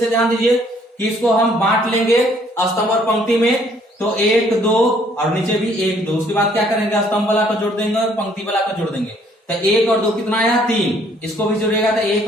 ध्यान दीजिए कि इसको हम बांट लेंगे स्तंभ और पंक्ति में, तो 1 2 और नीचे भी 1 2। उसके बाद क्या करेंगे? स्तंभ वाला को जोड़ देंगे और पंक्ति वाला को जोड़ देंगे, तो 1 और 2 कितना आया? 3। इसको भी जोड़ेगा तो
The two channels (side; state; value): both; normal; correlation 0.63